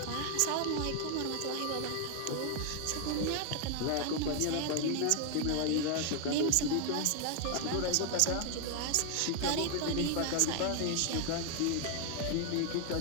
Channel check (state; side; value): different; both; correlation 0.00